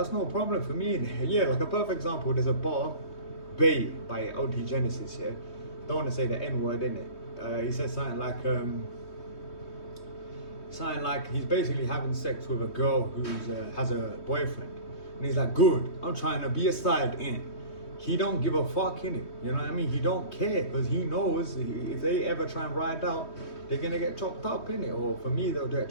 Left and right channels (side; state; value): right; late; 3.2 ms